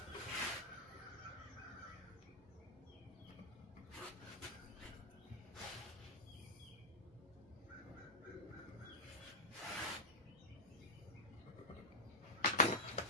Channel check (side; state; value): both; normal; correlation -0.12